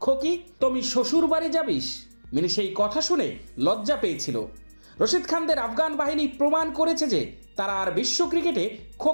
খোকি তুমি শ্বশুর বাড়ি যাবিস? মিনি সেই কথা শুনে লজ্জা পেয়েছিল। রশিদ খানদের আফগান বাহিনী প্রমাণ করেছে যে তারা আর বিশ্ব ক্রিকেটে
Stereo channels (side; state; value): both; inverted; correlation -1.00